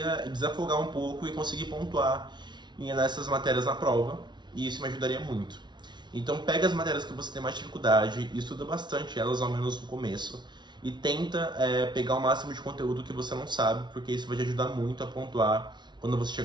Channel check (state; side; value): late; left; 0.21 ms